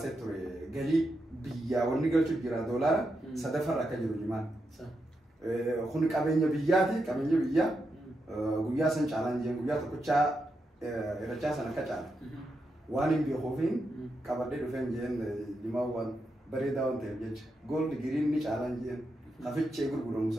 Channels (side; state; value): both; normal; correlation 0.85